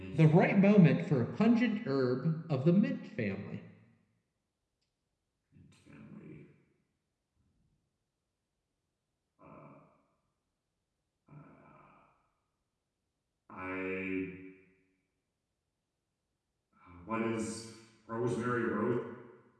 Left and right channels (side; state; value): both; identical; correlation 1.00